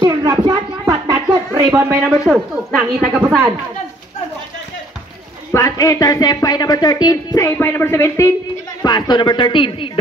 drop shot, but not good. Rebound by number 2. Nangita kapasan. Pass intercept by number 13, save by number 17. Pass to number 13,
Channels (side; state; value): both; normal; correlation 0.61